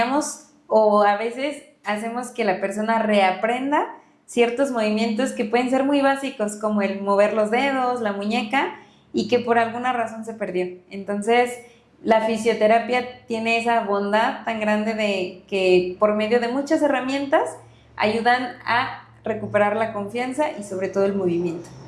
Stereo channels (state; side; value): identical; both; correlation 1.00